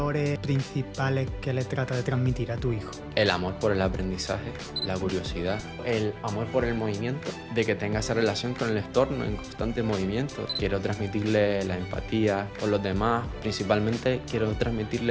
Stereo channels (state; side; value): identical; both; correlation 1.00